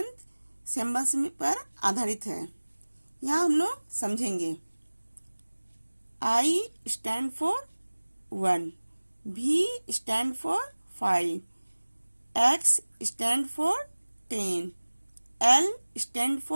सिंबल्स पर आधारित है। यहाँ हम लोग समझेंगे। I stand for 1, V stand for 5, X stand for 10, L stand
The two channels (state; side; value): inverted; both; correlation -1.00